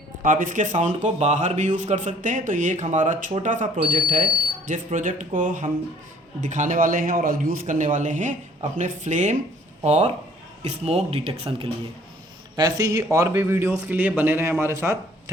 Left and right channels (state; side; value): normal; both; correlation 0.57